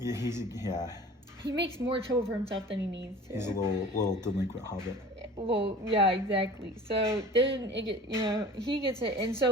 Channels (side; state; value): both; normal; correlation 0.42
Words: He makes more trouble for himself than he needs to. He's a little delinquent hobbit. Well, yeah, exactly. So then he gets it, and